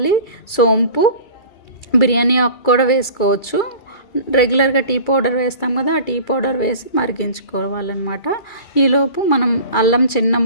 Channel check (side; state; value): right; late; 2.3 ms